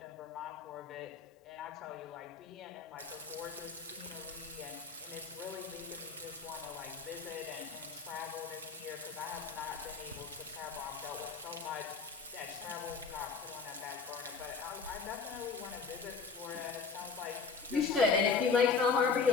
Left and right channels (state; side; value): quieter; right; 5.2 dB